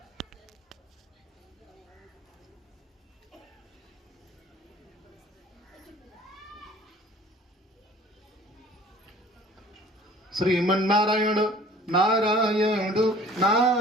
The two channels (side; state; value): both; normal; correlation 0.50